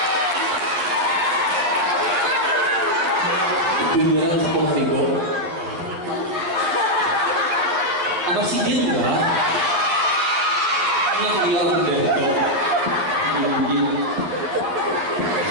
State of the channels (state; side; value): late; left; 11 ms